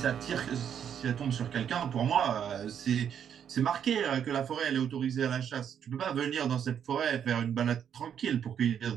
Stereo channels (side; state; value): left; quieter; 8.6 dB